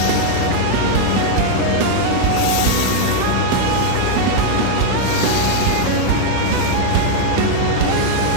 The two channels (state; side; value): different; both; correlation 0.00